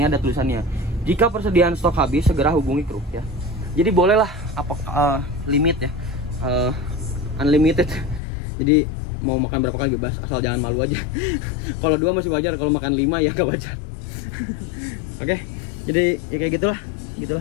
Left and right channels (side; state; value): right; drops out; at 8.2 s